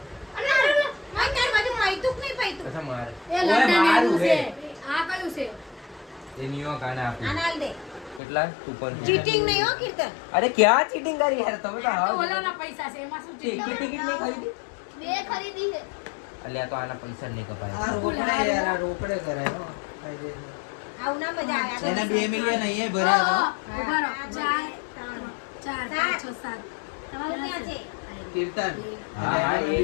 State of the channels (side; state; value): right; drops out; at 8.2 s